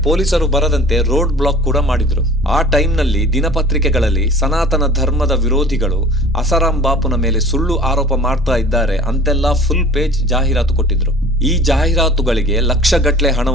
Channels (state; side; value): normal; both; correlation 0.44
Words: ಪೊಲೀಸರು ಬರದಂತೆ ರೋಡ್ ಬ್ಲಾಕ್ ಕೂಡ ಮಾಡಿದ್ರು. ಆ ಟೈಮ್ ನಲ್ಲಿ ದಿನಪತ್ರಿಕೆಗಳಲ್ಲಿ ಸನಾತನ ಧರ್ಮದ ವಿರೋಧಿಗಳು ಅಸಾರಾಂ ಬಾಪುನ ಮೇಲೆ ಸುಳ್ಳು ಆರೋಪ ಮಾಡ್ತಾ ಇದ್ದಾರೆ ಅಂತೆಲ್ಲ ಫುಲ್ ಪೇಜ್ ಜಾಹೀರಾತು ಕೊಟ್ಟಿದ್ರು. ಈ ಜಾಹೀರಾತುಗಳಿಗೆ ಲಕ್ಷಗಟ್ಟಲೆ